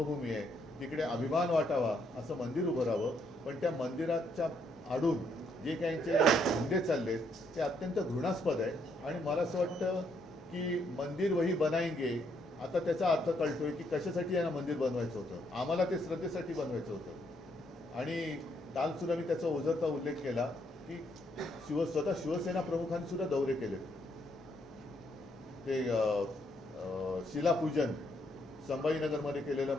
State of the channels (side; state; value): both; normal; correlation 0.73